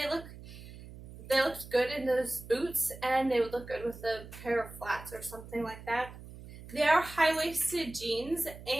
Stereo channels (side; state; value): right; noise; hum, 15 dB below the sound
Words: looked good in those boots, and they would look good with a pair of flats or something like that. They are high-waisted jeans,